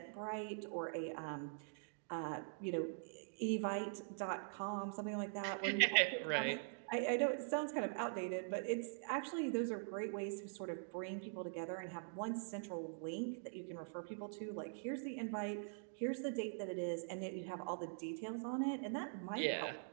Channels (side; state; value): left; silent; digital silence